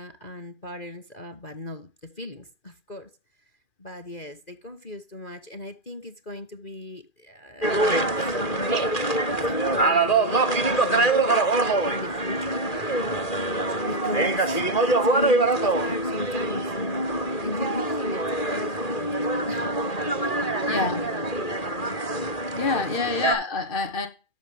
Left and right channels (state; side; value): late; right; 2.4 ms